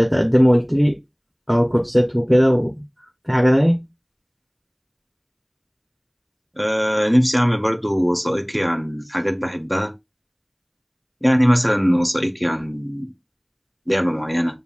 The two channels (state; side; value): identical; both; correlation 1.00